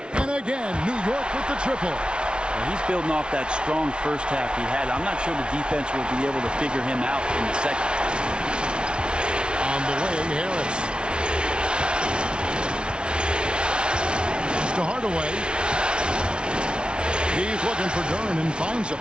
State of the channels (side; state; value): left; late; 0.056 ms